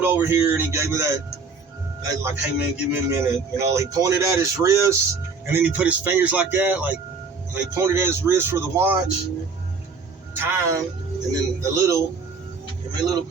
over here and he gave me that like, hey man, give me a minute. You know, he pointed at his wrist and then he put his fingers like that, like, and he pointed at his wrist for the watch time, and then the little, give me a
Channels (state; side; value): quieter; left; 4.7 dB